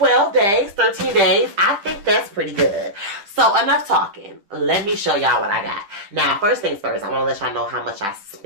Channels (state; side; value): late; left; 10 ms